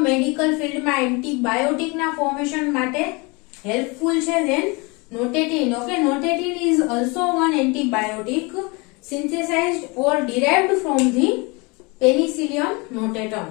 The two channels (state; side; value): quieter; right; 27.8 dB